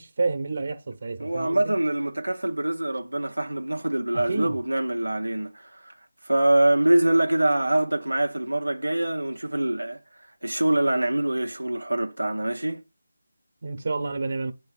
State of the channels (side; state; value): both; inverted; correlation -0.99